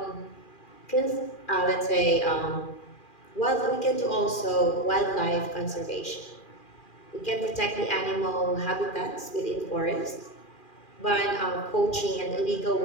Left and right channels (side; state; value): right; late; 2.4 ms